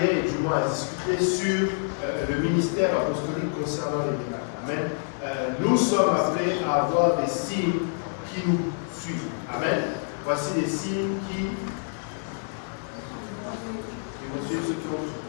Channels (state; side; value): silent; right; 57 dB below the other